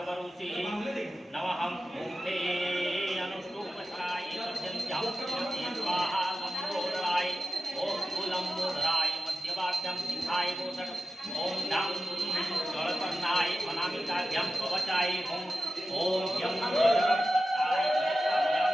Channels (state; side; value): normal; both; correlation 0.93